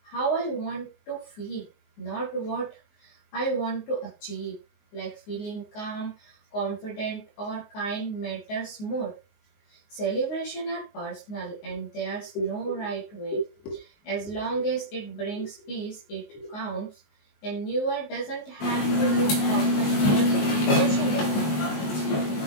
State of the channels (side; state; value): right; late; 20 ms